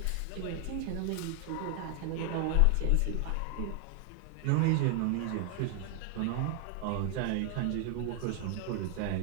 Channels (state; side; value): different; both; correlation 0.00